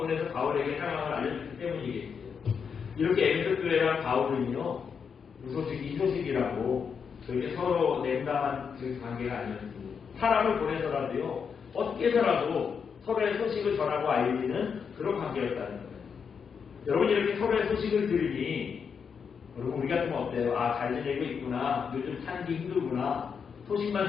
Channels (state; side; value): quieter; right; 6.4 dB